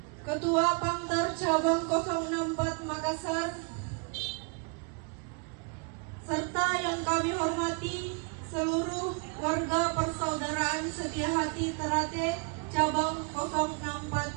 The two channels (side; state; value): left; quieter; 33.9 dB